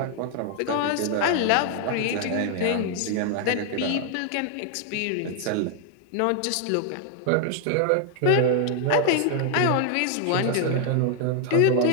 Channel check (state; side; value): different; both; correlation 0.00